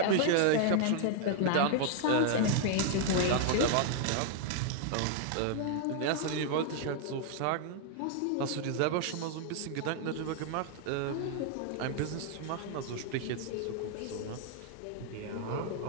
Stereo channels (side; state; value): both; different; correlation 0.00